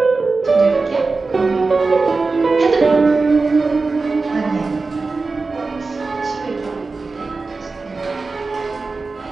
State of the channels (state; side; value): quieter; left; 3.9 dB